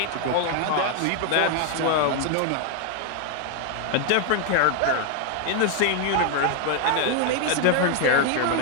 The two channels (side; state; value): both; different; correlation 0.00